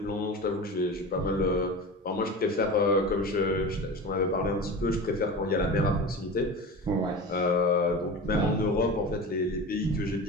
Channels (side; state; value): both; normal; correlation 0.30